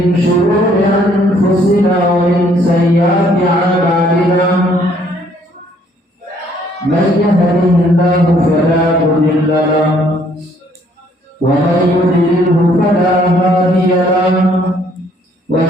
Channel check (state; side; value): normal; both; correlation 0.64